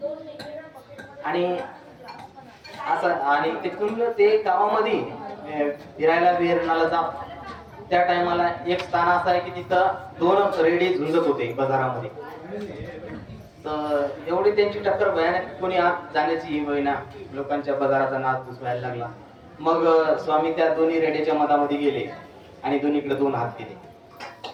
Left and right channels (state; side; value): identical; both; correlation 1.00